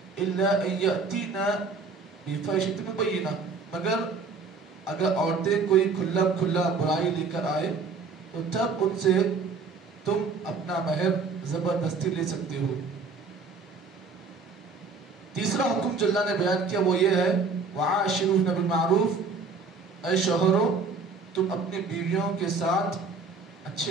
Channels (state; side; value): quieter; left; 4.5 dB